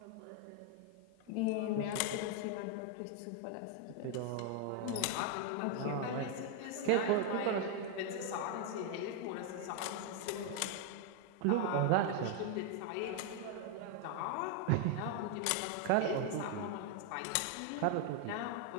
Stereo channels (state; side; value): different; both; correlation 0.01